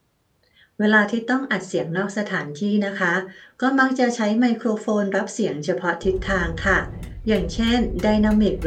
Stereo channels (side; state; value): both; identical; correlation 1.00